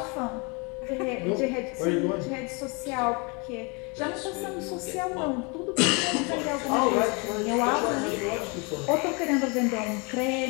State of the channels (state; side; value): quieter; right; 31.0 dB